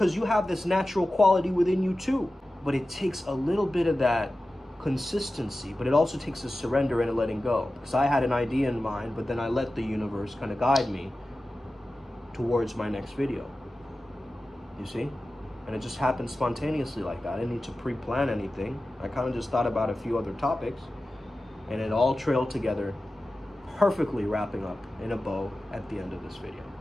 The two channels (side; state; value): both; normal; correlation 0.95